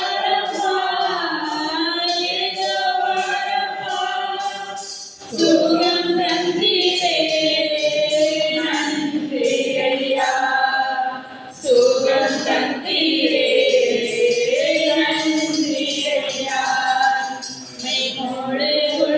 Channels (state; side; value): identical; both; correlation 1.00